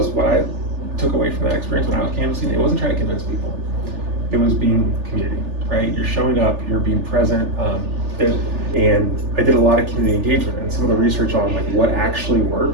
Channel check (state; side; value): late; left; 3.4 ms